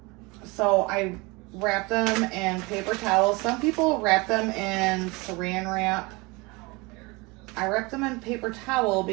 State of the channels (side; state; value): left; quieter; 25.4 dB